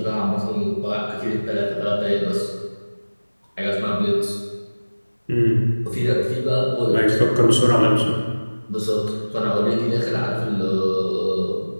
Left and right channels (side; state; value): both; inverted; correlation -1.00